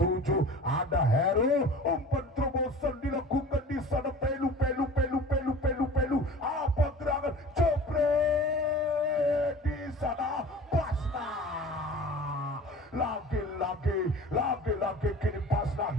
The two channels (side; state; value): both; normal; correlation 0.41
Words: ada Heru, umpan terobosan dilakukan di sana. Pelu apa gerangan jebret di sana. Pasna lagi kini Pasna